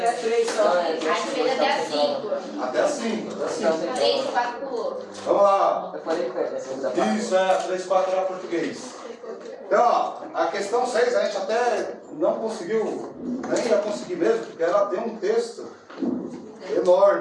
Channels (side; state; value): both; identical; correlation 1.00